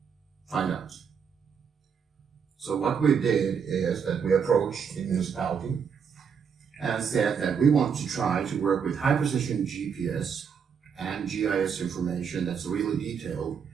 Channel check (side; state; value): left; quieter; 6.8 dB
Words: find out. So what we did is that we approached the municipality and said that we want to try to work with high precision GPS and GIS information that's really detailed